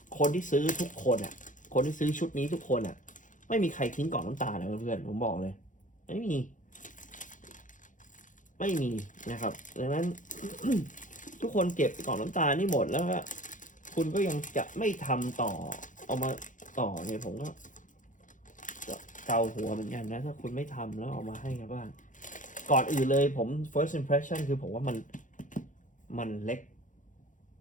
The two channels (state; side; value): late; right; 0.37 ms